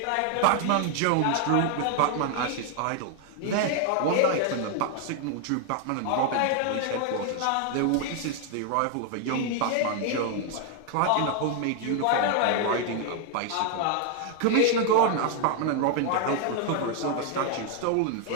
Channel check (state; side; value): different; both; correlation 0.00